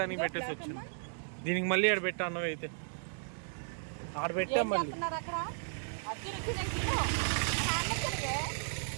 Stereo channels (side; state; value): left; silent; digital silence